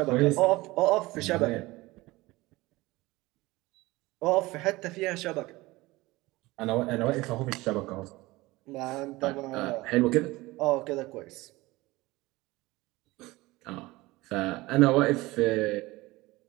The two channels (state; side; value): quieter; left; 20.4 dB